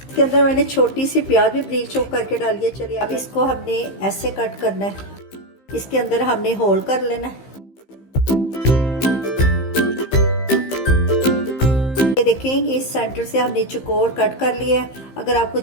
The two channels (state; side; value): late; right; 15 ms